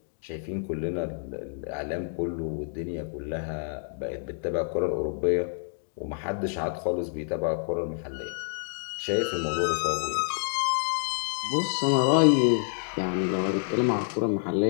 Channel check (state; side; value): silent; right; digital silence